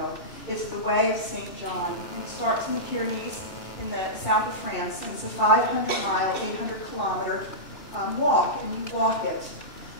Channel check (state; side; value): late; right; 2.7 ms